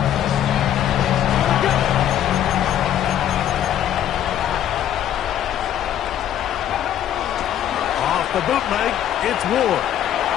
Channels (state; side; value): quieter; right; 10.8 dB